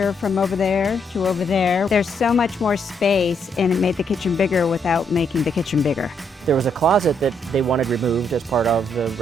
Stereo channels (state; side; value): normal; both; correlation 0.74